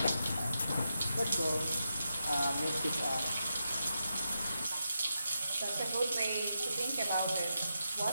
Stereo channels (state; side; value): inverted; both; correlation -0.86